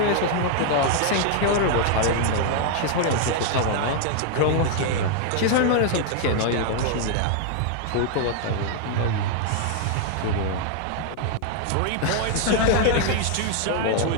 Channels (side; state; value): both; different; correlation 0.00